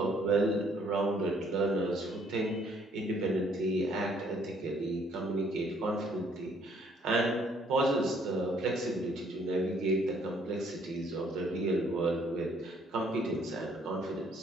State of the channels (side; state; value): both; normal; correlation 0.64